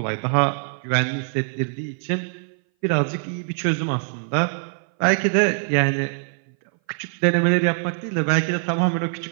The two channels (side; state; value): left; silent; 59 dB below the other